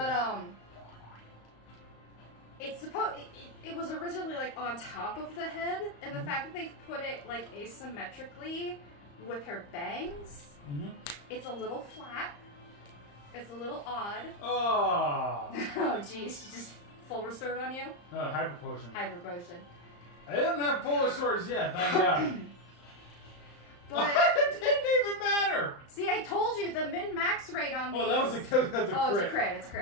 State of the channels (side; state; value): right; late; 35 ms